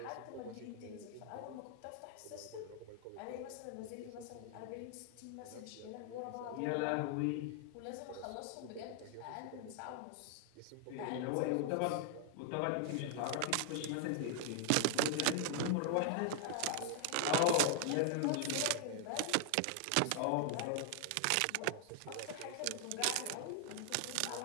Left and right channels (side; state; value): both; different; correlation 0.00